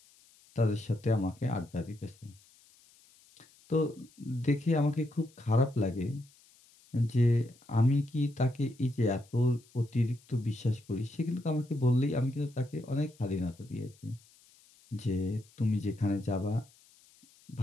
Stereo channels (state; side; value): noise; left; hiss, 28 dB below the sound